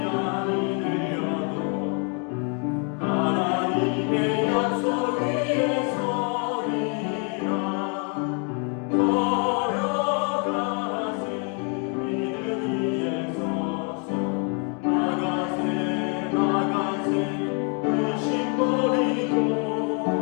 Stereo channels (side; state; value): right; quieter; 37.7 dB